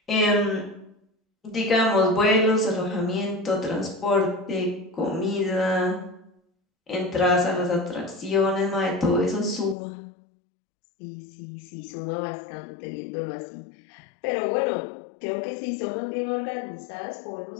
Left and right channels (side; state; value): right; drops out; at 9.8 s